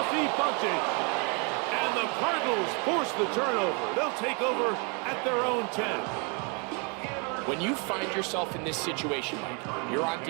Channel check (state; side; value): quieter; left; 34.2 dB